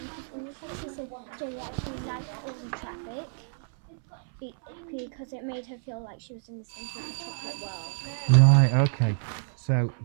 When you said she said Jay actually liked all the traffic because it made her feel like she was in the centre of the chocolate world. Right, okay. So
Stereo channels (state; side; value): silent; left; 59 dB below the other